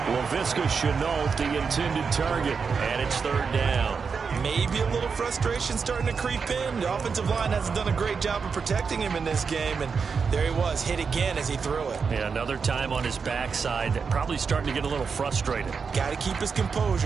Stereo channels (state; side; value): quieter; left; 5.5 dB